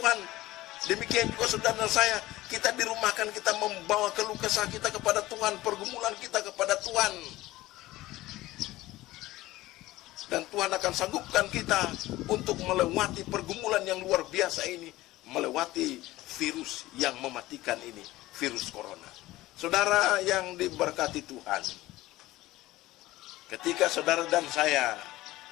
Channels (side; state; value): right; quieter; 17.4 dB